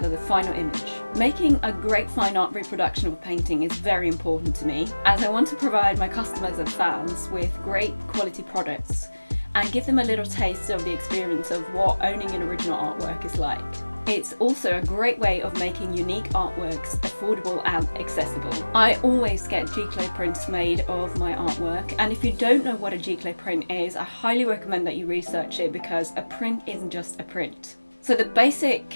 the final image. Making a great fine art reproduction of a painting is very important to me, as I want to provide my customers and fans with great quality products and give them a little taste of the experience of what owning an original artwork is like. It's also a great way of making unique artworks affordable and accessible. I always get G-clay prints made of my artwork, and if you don't know what a G-clay print is, I highly recommend that you research it, because a print isn't just a print. So the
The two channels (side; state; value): both; inverted; correlation -1.00